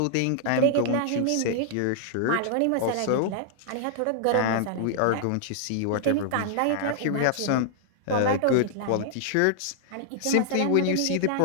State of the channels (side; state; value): both; different; correlation -0.01